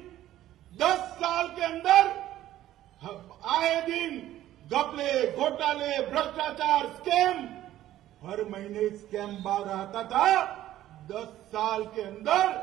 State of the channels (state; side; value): quieter; left; 13.5 dB